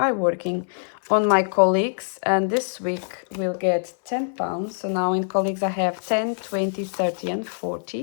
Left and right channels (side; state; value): right; silent; 63 dB below the other